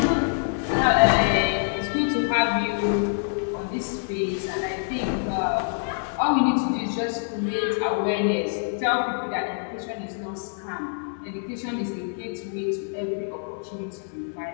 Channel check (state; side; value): silent; right; digital silence